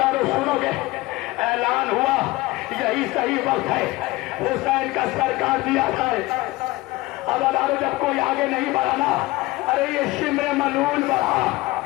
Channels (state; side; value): quieter; right; 20.1 dB